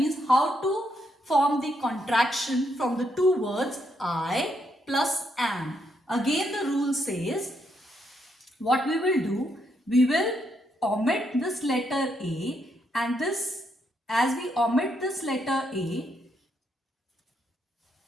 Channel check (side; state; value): both; normal; correlation 0.77